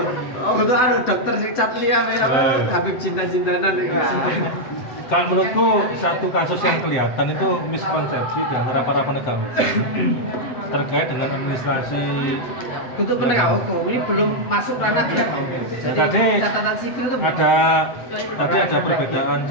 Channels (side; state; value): right; late; 7.9 ms